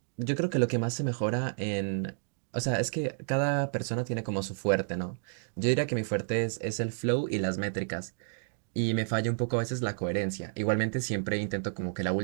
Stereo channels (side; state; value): left; silent; digital silence